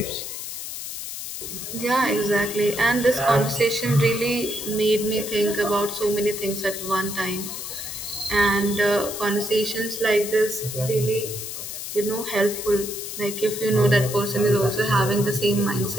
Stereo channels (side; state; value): left; noise; hiss, 7 dB below the sound